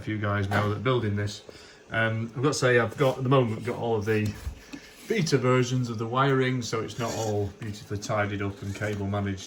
few guys now that are building this. I've got to say, I've got, at the moment, got all of the beta versions of the wiring, so it's not all beautifully tidied up and cable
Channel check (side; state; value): both; identical; correlation 1.00